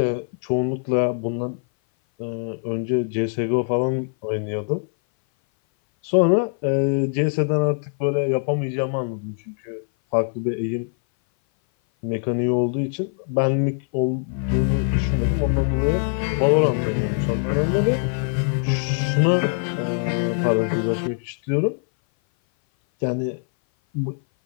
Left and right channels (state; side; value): silent; right; 57 dB below the other